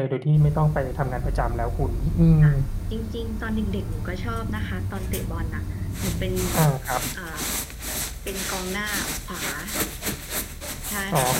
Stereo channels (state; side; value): identical; both; correlation 1.00